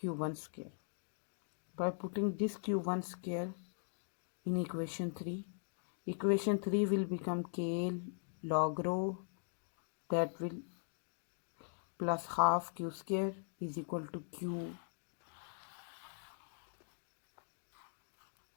square. By putting this Q1 square in equation 3, equation 3 will become K log rho, that will plus half q square is equal to Q1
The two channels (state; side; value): silent; right; digital silence